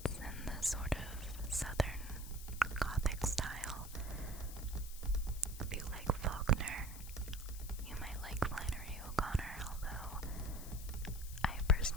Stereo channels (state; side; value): noise; left; hiss, 13 dB below the sound